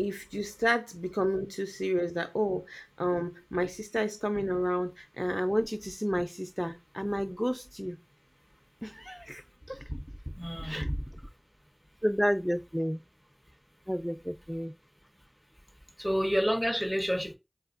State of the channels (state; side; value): identical; both; correlation 1.00